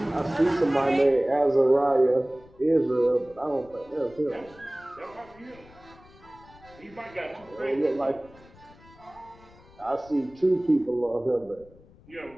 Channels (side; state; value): left; noise; rumble, 24 dB below the sound